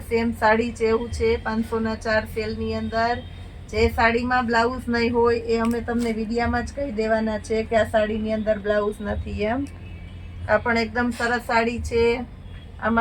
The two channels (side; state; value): both; identical; correlation 1.00